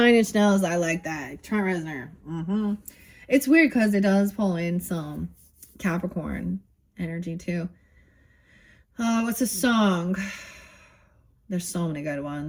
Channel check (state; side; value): identical; both; correlation 1.00